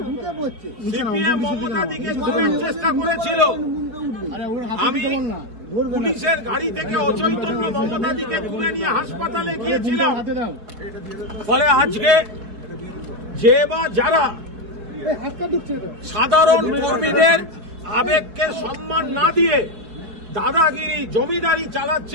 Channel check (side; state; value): left; late; 4.7 ms